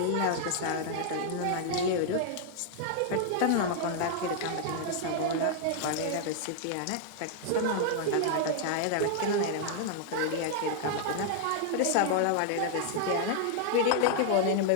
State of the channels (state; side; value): different; both; correlation -0.01